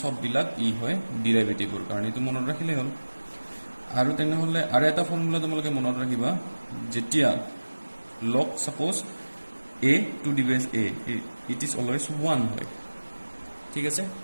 সব বিলাক ই হয় ডেৰিভেটিভৰ কাৰণে এটো মনত ৰাখিলে হ'ল আৰু তেনেহলে আৰু এটা ফৰ্মুলা তোমালোকে মনত ৰাখিবা যেতিয়া log suppose a to the base a it is always 1 হয় ঠিক আছে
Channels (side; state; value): both; inverted; correlation -1.00